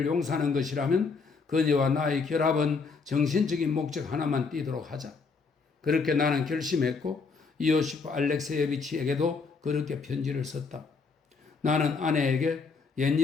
용서하는 것이라면 그녀와 나의 결합은 정신적인 목적 하나만 띠도록 하자. 그렇게 나는 결심했고 이오시프 알렉세예비치에게도 그렇게 편지를 썼다. 나는 아내에게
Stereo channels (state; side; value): quieter; right; 4.8 dB